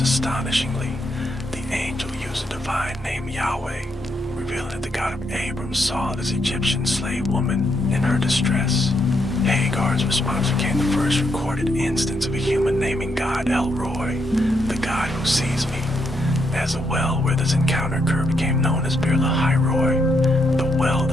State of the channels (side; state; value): both; normal; correlation 0.78